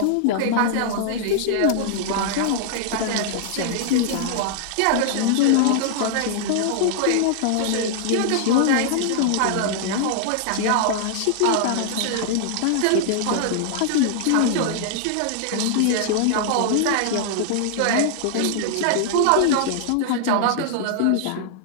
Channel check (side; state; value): both; different; correlation -0.01